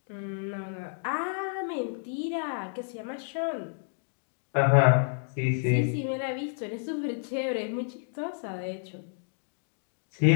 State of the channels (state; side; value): silent; right; digital silence